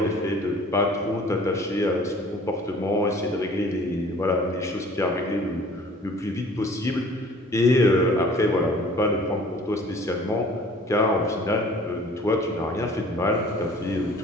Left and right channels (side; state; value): both; normal; correlation 0.50